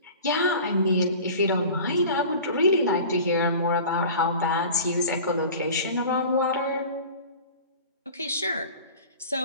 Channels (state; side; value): inverted; both; correlation -0.40